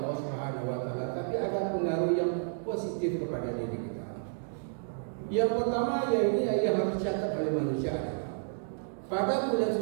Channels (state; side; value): silent; left; digital silence